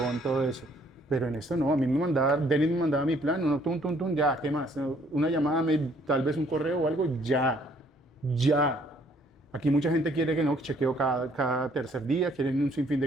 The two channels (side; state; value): both; normal; correlation 0.63